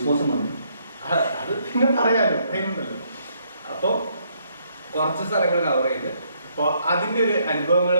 അത് പിന്നെ പറയാലോ, അതിനുണ്ടല്ലോ. അപ്പൊ കുറച്ച് സ്ഥലങ്ങൾ കവർ ചെയ്ത് അപ്പൊ അതിന്റെ ഒരു അനുഭവങ്ങൾ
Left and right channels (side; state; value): both; inverted; correlation -0.71